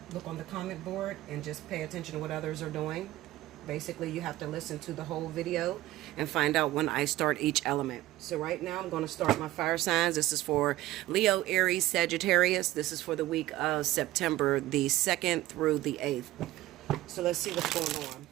on the comment board and just pay attention to what others are doing. Basically, you have to listen to the whole video and find out when I start each element. So right now, I'm going to start my fire signs. This is for Leo, Aries, Sagittarius. This is for the week of September the 2nd through the 8th. So let's see what's going on.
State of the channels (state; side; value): quieter; left; 16.2 dB